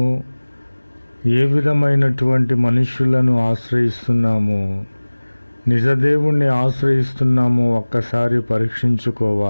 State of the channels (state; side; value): inverted; both; correlation -1.00